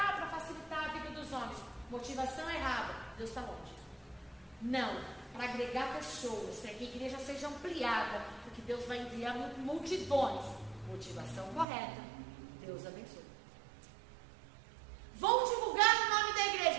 facilitar a vida dos homens. Motivação errada. Deus está longe. Não, para agregar pessoas, para que a igreja seja ampliada, porque Deus vai enviar multidões. Motivação correta. Deus abençoe. Vão divulgar o nome da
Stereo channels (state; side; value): drops out; left; at 11.7 s